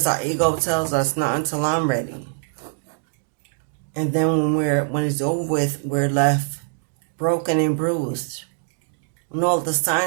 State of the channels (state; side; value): silent; left; digital silence